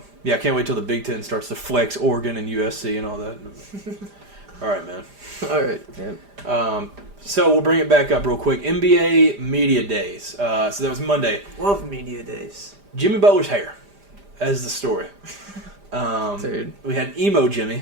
Yeah, I can't wait till the Big Ten starts to flex Oregon and USC and all that. All right, man. All right. Yeah. So we'll bring it back up real quick. NBA Media Days. So that was Monday. Love Media Days. Jimmy Butler's hair as the story. Dude. We had Emo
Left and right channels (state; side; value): late; left; 5.0 ms